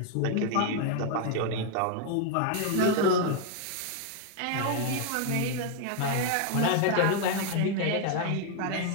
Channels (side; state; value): both; different; correlation 0.00